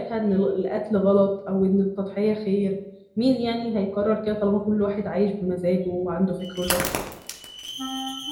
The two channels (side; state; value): both; identical; correlation 1.00